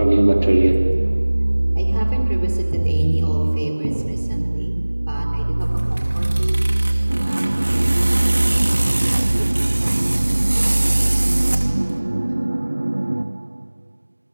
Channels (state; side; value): inverted; both; correlation -1.00